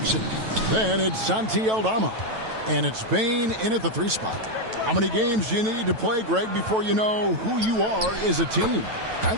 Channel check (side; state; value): left; late; 9.1 ms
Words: Then it's Santi Aldama. And it's Bane in at the 3 spot. How many games do you need to play, Greg, before you know who you are as a team? I